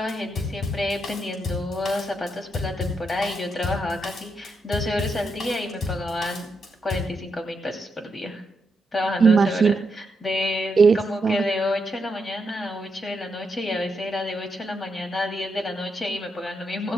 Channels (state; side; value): normal; both; correlation 0.82